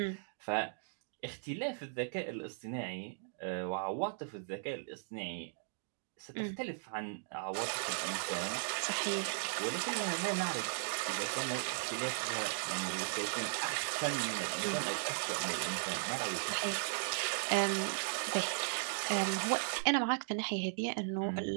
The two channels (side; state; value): left; silent; digital silence